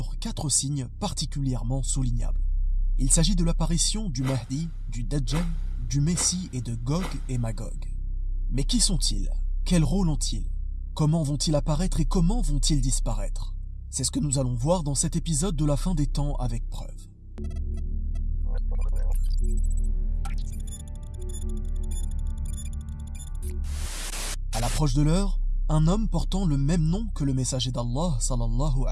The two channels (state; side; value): identical; both; correlation 1.00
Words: 4 signes particulièrement soulignables. Il s'agit de l'apparition du Mahdi, du Dajjal, du Messie et de Gog et Magog. Mais qui sont-ils? Quel rôle ont-ils? Comment vont-ils apparaître et comment vont-ils disparaître? C'est ce que nous allons voir dans cet épisode de la fin des temps avec preuve. À l'approche de l'heure, un homme portant le même nom que le messager d'Allah sallallahu